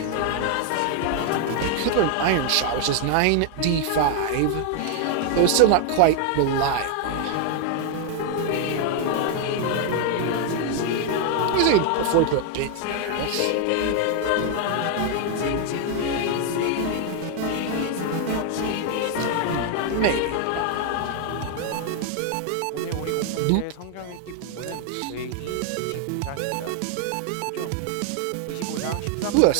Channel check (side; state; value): both; different; correlation 0.00